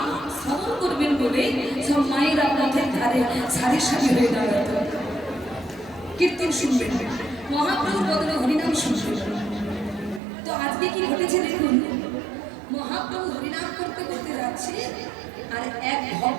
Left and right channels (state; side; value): drops out; left; at 10.2 s